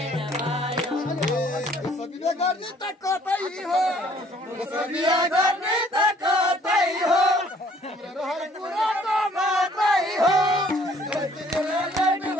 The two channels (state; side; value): normal; both; correlation 0.59